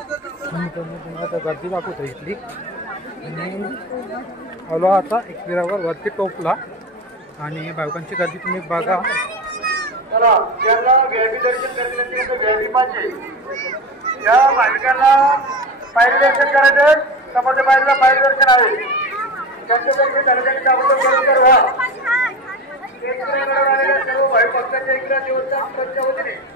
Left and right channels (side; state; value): both; normal; correlation 0.27